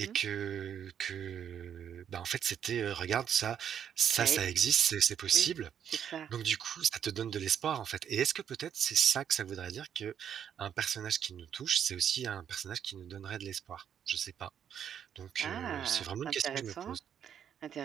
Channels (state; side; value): quieter; left; 8.9 dB